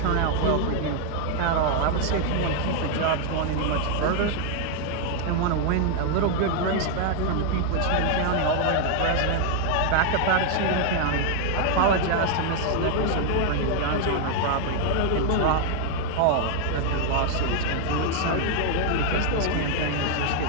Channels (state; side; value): different; both; correlation 0.00